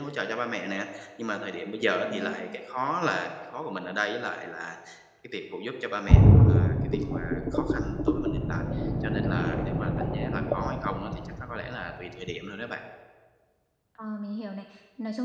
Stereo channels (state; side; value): identical; both; correlation 1.00